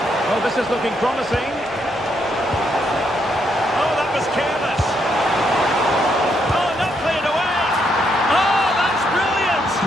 Oh, this is looking promising. Oh, that was careless. Oh, not cleared away. Oh, that's brilliant.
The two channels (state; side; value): normal; both; correlation 0.76